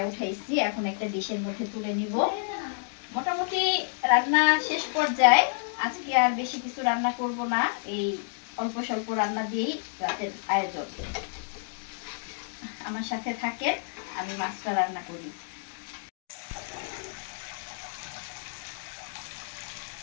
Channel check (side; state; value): right; silent; digital silence